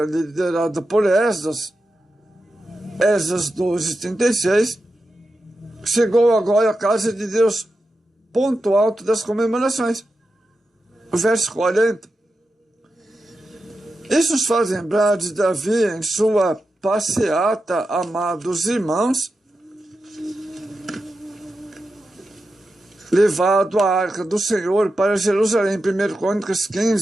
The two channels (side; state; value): both; normal; correlation 0.90